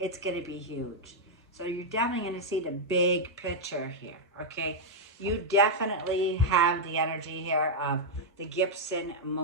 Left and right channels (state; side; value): normal; both; correlation -0.03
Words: going to be huge. So you're definitely going to see the big picture here, okay? You definitely have the energy here of the Gibson